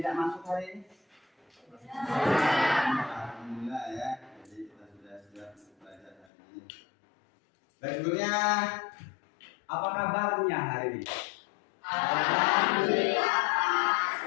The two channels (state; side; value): drops out; right; at 6.2 s